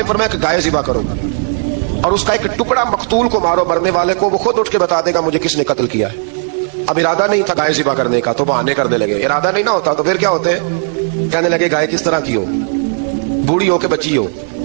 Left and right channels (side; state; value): left; silent; 64 dB below the other